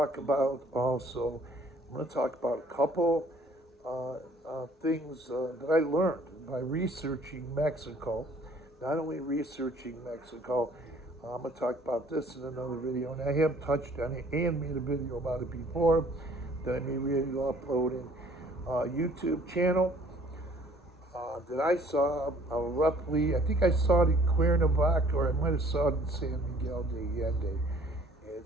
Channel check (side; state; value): both; normal; correlation 0.57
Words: about also, I'm going to talk about a couple things that I learned by researching Mexico. Not only researching Mexico, I'm going to talk about this in another video, and I have touched on it and made a video about it before that I may really upload in YouTube channel that I saw roughly, I think I saw it in Cuernavaca, or I might have saw it in San Miguel de Allende.